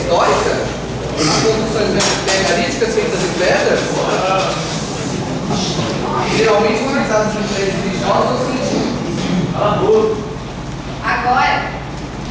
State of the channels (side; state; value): both; identical; correlation 1.00